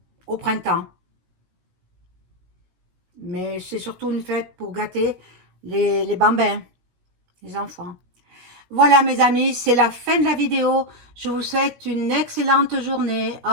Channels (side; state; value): left; late; 16 ms